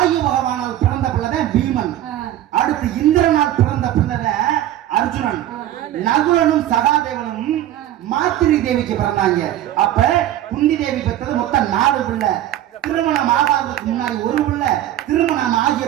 பகவானால் பிறந்த பிள்ளைதான் பீமன். அடுத்து இந்திரனால் பிறந்த பிள்ளைதான் அர்ஜுனன். நகுலனும் சகாதேவனும் மாத்திரி தேவிக்கு பிறந்தாங்க. அப்ப குந்தி தேவி பெற்றது மொத்தம் 4 பிள்ளை. திருமணம் ஆகாததுக்கு முன்னாடி 1 பிள்ளை, திருமணம் ஆகிய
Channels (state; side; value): quieter; left; 12.7 dB